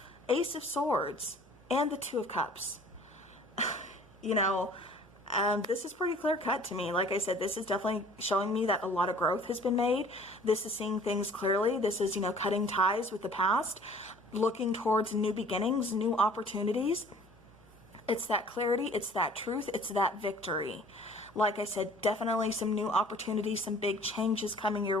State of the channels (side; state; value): both; normal; correlation 0.51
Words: Ace of Swords, and the Two of Cups. You know, this is pretty clear cut to me. Like I said, this is definitely showing me that a lot of growth has been made. This is seeing things clearly. This is, you know, cutting ties with the past, looking towards new beginnings, new opportunities. It's that clarity. It's that truth. It's that victory. Like I said, definitely some new opportunities, some big changes coming your